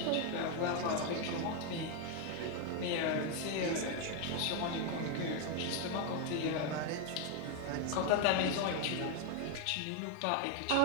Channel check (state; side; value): different; both; correlation 0.01